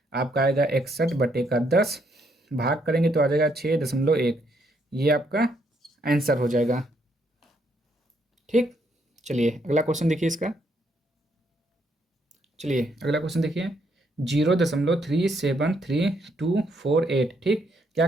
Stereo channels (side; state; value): both; normal; correlation 0.73